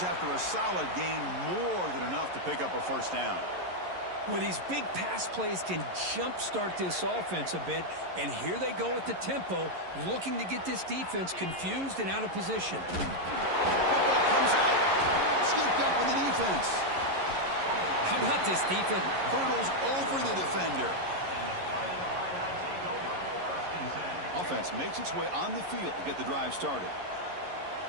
after a solid gain. More than enough to pick up a 1st down. Well, these big pass plays can jumpstart this offense a bit. And here they go at the tempo, looking to get this defense confused and out of position. Football comes out. Scooped up with the defense. How about this defense? Hurdles over the defender. Offense makes its way on the field to get the drive started.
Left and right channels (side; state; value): left; late; 11 ms